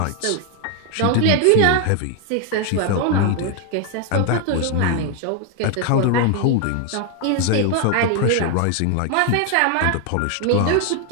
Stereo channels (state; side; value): different; both; correlation 0.01